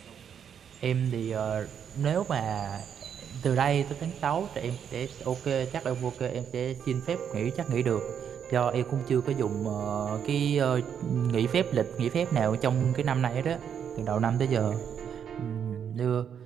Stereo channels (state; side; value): quieter; left; 8.1 dB